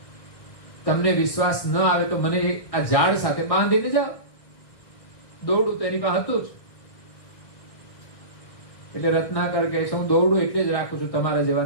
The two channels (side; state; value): right; late; 1.6 ms